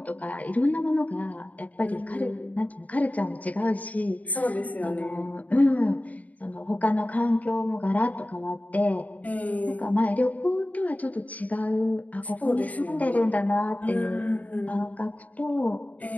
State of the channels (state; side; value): late; right; 0.073 ms